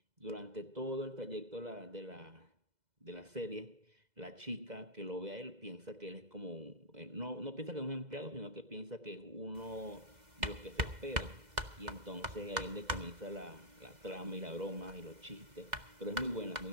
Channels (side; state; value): left; late; 2.0 ms